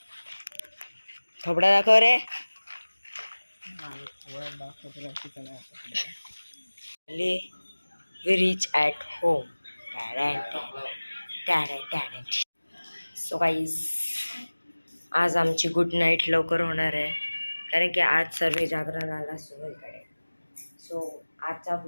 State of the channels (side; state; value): both; inverted; correlation -1.00